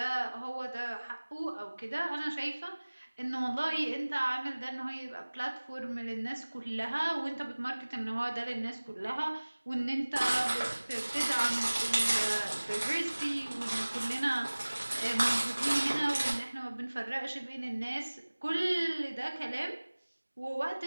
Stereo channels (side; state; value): both; inverted; correlation -1.00